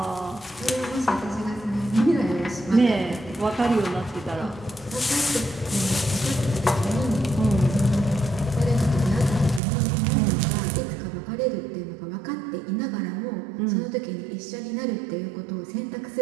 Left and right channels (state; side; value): drops out; left; at 9.6 s